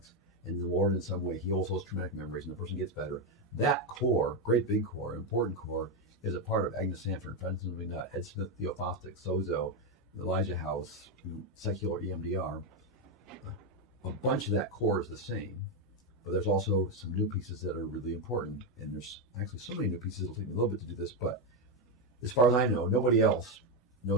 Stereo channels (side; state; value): both; normal; correlation 0.07